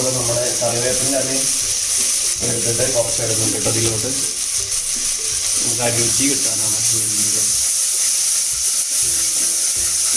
നമ്മുടെ കറിവേപ്പിൻ്റെ ഇലയും എടുത്തിട്ട് കുറച്ച് എടുക്കുന്നുണ്ട് കേട്ടോ. അതിലോട്ട് നമുക്ക് ആ രുചി കിട്ടാനാണ്.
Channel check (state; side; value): identical; both; correlation 1.00